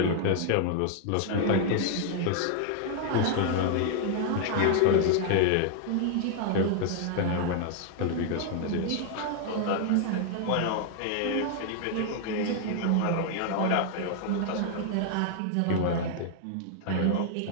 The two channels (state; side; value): different; both; correlation 0.00